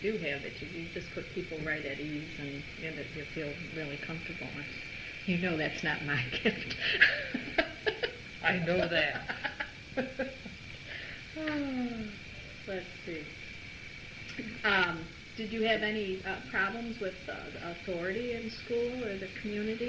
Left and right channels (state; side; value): identical; both; correlation 1.00